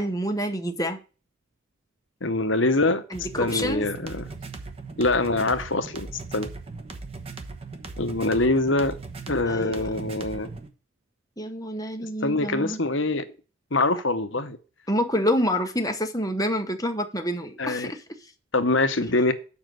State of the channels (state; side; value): normal; both; correlation 0.15